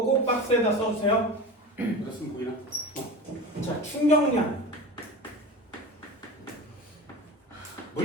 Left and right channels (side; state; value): both; normal; correlation 0.29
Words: 꼭 박스에다 써주세요. 그랬으면 보이나? 자, 충격량.